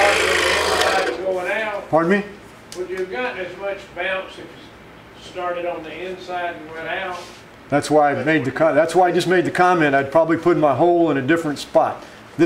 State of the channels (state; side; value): identical; both; correlation 1.00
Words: Pardon me? Would you have gotten as much bounce if you started on the inside and went out? That's why I made that's why I just made the comment. I'd probably put my hole in a different spot.